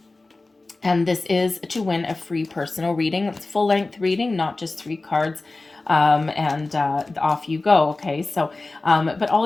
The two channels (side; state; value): right; quieter; 3.3 dB